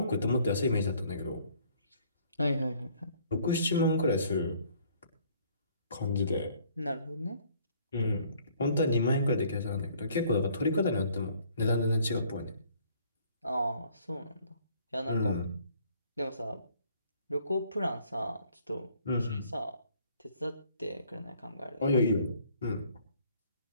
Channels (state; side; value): inverted; both; correlation -0.60